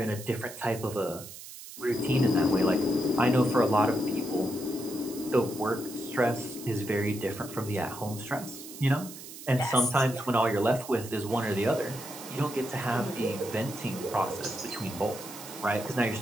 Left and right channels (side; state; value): right; noise; hiss, 14 dB below the sound